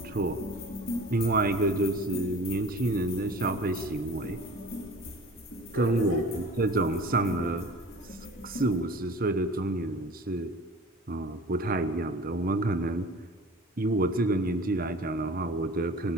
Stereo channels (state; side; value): normal; both; correlation 0.42